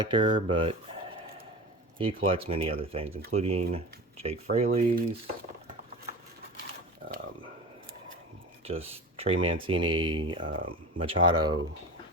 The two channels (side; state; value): both; normal; correlation 0.31